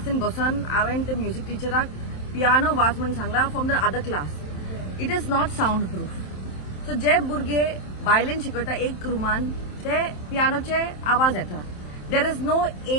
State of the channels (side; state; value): right; late; 27 ms